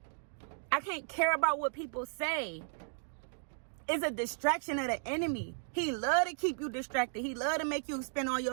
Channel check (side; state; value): left; silent; digital silence